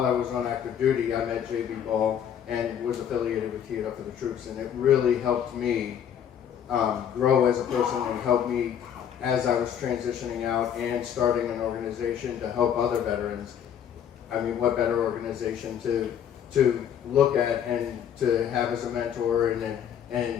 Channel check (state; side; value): quieter; right; 9.0 dB